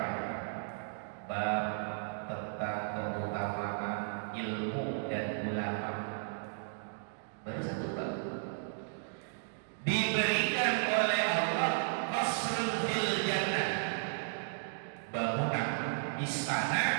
Bab tentang keutamaan ilmu dan ulama. Baru satu bab. Diberikan oleh Allah qasrun fil jannah, bangunan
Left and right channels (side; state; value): left; silent; digital silence